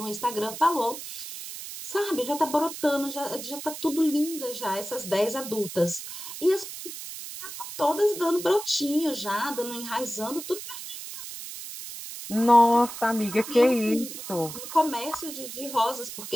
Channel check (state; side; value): noise; right; hiss, 10 dB below the sound